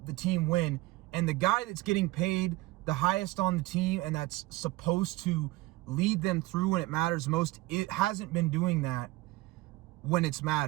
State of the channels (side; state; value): left; quieter; 20.0 dB